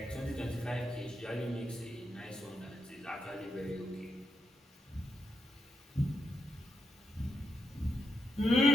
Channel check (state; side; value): normal; both; correlation 0.83